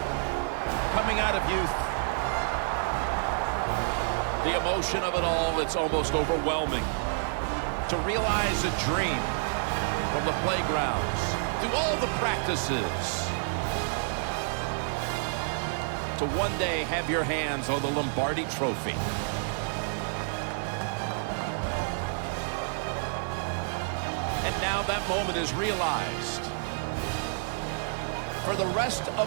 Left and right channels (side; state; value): left; silent; digital silence